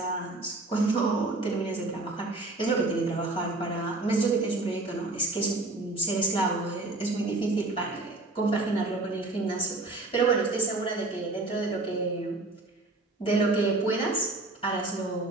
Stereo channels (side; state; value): left; quieter; 3.0 dB